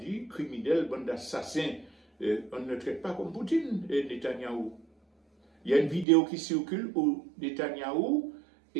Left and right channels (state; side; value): drops out; left; at 6.1 s